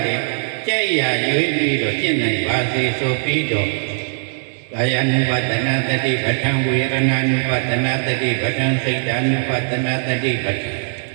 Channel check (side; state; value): left; silent; 58 dB below the other